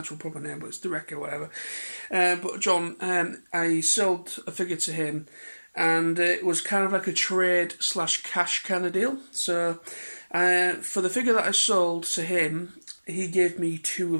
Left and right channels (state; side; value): inverted; both; correlation -1.00